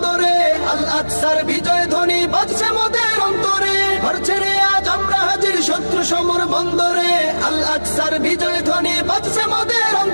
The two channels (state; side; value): inverted; both; correlation -1.00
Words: আল আকসার বিজয় ধ্বনি বাজছে মোদের অন্তরে, ঘর ছেড়ে আজ আমরা হাজির শত্রু সমর বন্দরে। আল আকসার বিজয় ধ্বনি বাজছে মোদের